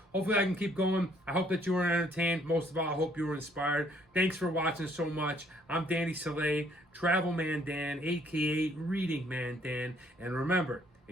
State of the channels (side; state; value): both; normal; correlation 0.65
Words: hopefully I can keep going. I hope that you were entertained. Most of all, I hope you were inspired. Thanks for watching so much. I'm Danny Soleil, Travel Man Dan, aka Reading Man Dan. And remember,